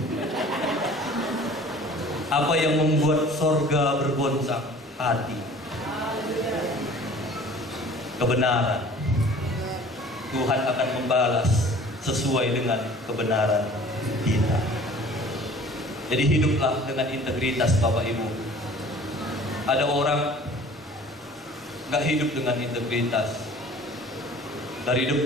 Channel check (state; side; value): normal; both; correlation 0.48